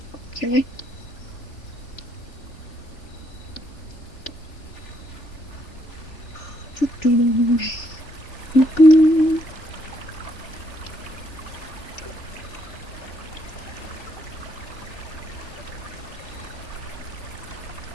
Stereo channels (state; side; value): late; right; 3.4 ms